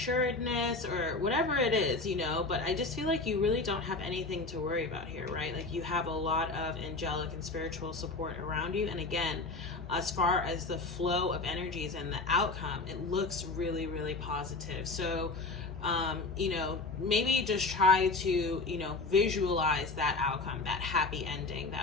or whatever it is, you know, but I just feel like you really don't have anything to worry about here, right? Like you have a lot of angelic and spiritual support around you. And again, as far as the flow of energies and the outcome, it looks really, really positive. So, you know, maybe just try to, you know, visualize that outcome, that happy ending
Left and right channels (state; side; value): quieter; right; 3.6 dB